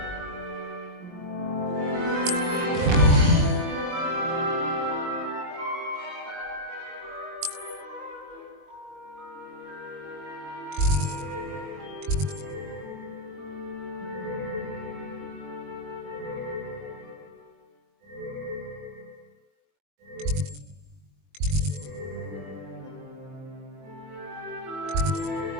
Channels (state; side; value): late; left; 21 ms